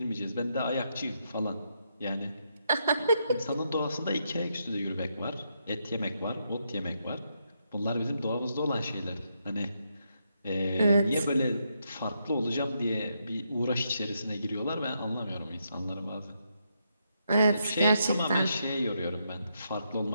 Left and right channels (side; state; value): both; inverted; correlation -0.80